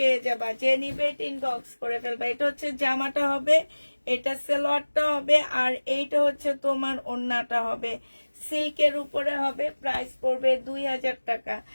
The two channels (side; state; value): both; inverted; correlation -1.00